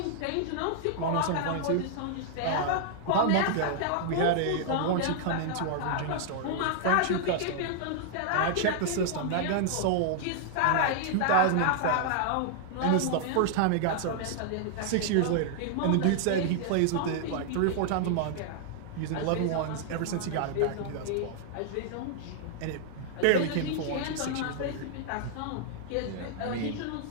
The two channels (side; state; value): both; different; correlation -0.01